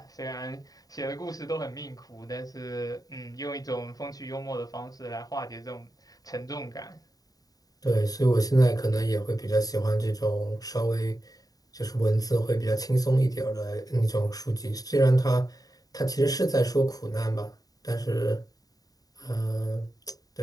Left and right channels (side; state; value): right; late; 0.18 ms